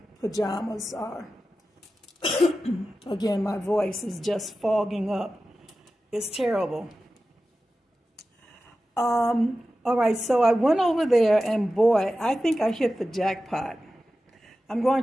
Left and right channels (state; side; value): normal; both; correlation 0.94